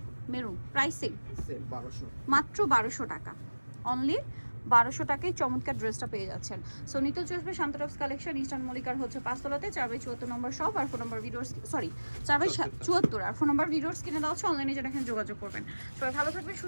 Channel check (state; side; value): inverted; both; correlation -1.00